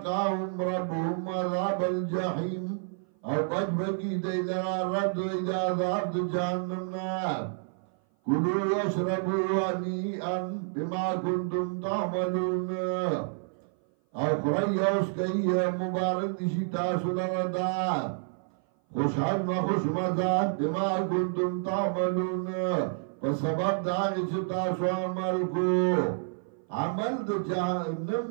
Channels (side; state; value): left; silent; 57 dB below the other